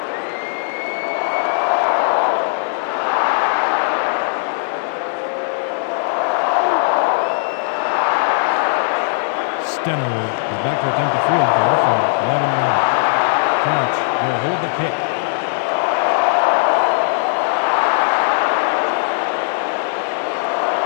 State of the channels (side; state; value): right; silent; digital silence